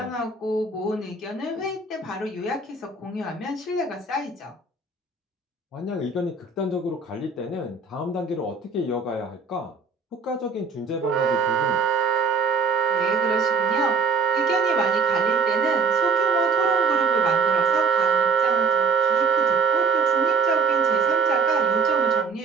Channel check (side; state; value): left; quieter; 4.6 dB